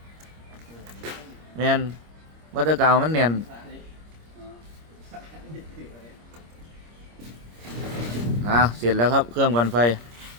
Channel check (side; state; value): left; late; 25 ms